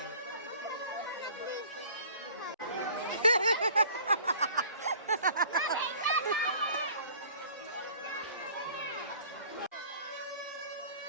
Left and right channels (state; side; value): inverted; both; correlation -0.50